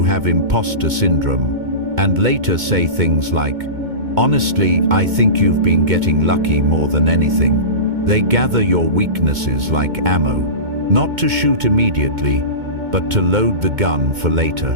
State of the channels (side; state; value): left; late; 2.2 ms